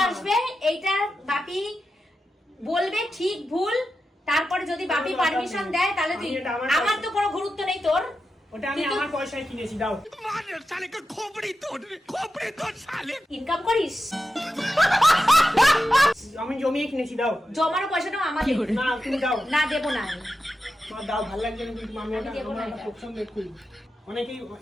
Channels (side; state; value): both; normal; correlation 0.90